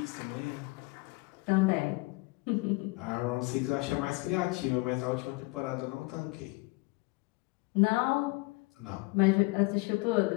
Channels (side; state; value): right; quieter; 25.7 dB